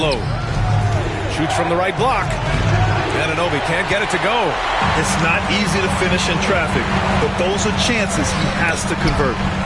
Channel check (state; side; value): identical; both; correlation 1.00